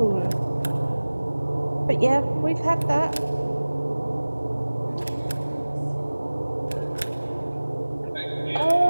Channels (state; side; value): inverted; both; correlation -1.00